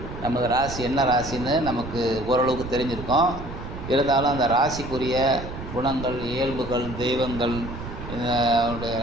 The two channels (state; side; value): noise; right; rumble, 10 dB below the sound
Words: நமக்கு ராசி என்ன ராசின்னு நமக்கு ஓரளவுக்கு தெரிஞ்சிருக்கோம். இருந்தாலும் அந்த ராசிக்குரிய குணங்கள், இயல்புகள், தெய்வங்கள்,